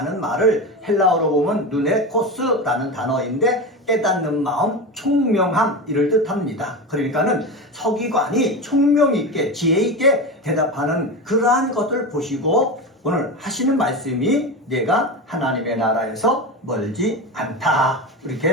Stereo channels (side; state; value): both; normal; correlation 0.22